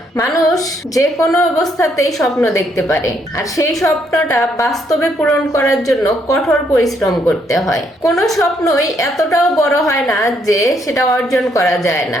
মানুষ যে কোনো অবস্থাতেই স্বপ্ন দেখতে পারে, আর সেই স্বপ্নটা বাস্তবে পূরণ করার জন্য কঠোর পরিশ্রম করতে হয়। কোনো স্বপ্নই এতটাও বড় হয় না যে সেটা অর্জন করা যায় না।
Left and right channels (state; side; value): normal; both; correlation 0.72